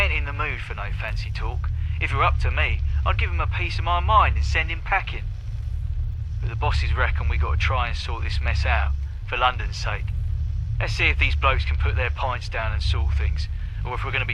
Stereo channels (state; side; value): identical; both; correlation 1.00